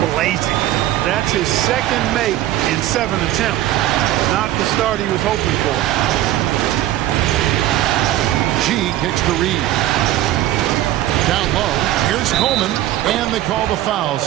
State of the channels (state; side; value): quieter; left; 14.1 dB